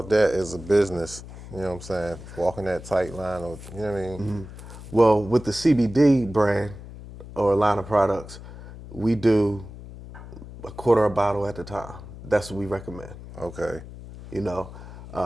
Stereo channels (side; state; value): left; noise; hum, 14 dB below the sound